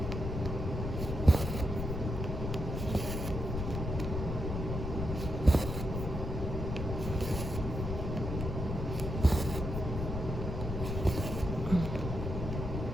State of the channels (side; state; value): left; noise; rumble, 3 dB below the sound